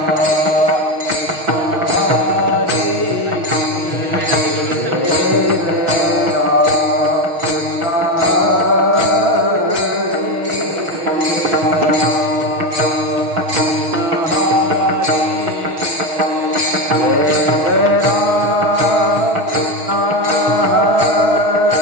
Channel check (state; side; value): late; left; 6.4 ms